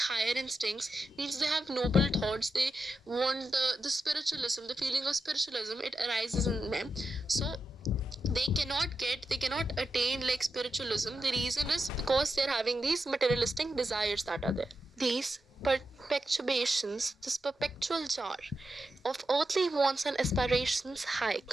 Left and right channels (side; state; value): both; normal; correlation 0.88